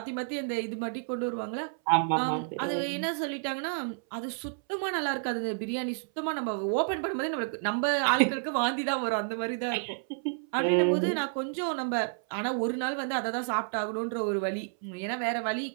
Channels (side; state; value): left; silent; 58 dB below the other